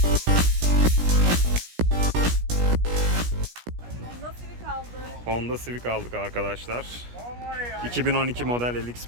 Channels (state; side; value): late; left; 17 ms